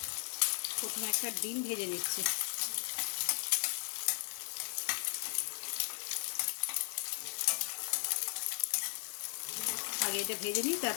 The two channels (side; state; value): right; silent; 53 dB below the other